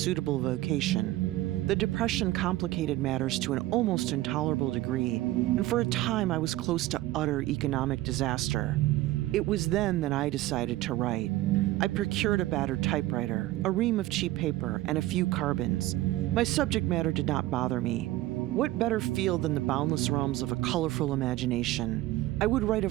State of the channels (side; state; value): left; quieter; 16.5 dB